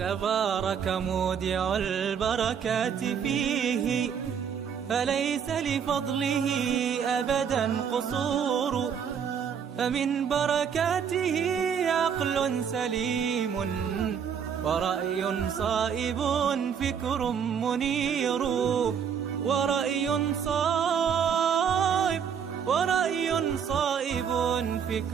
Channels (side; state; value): left; quieter; 7.5 dB